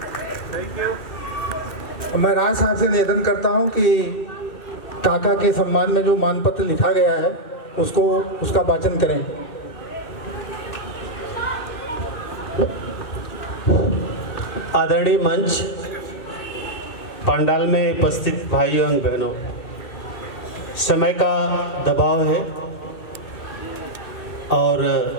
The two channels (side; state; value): right; late; 2.4 ms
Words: Thank you. मैं राय साहब से निवेदन करता हूं कि काका के सम्मान में जो मानपत्र लिखा गया है उसका वाचन करें। आदरणीय मंच, पंडाल में उपस्थित भाइयों एवं बहनों, समय का दबाव है और